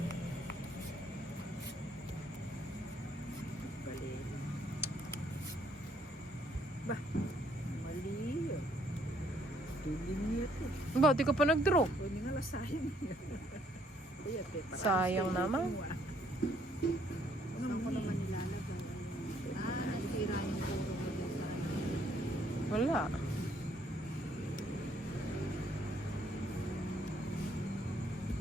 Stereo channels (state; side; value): normal; both; correlation 0.67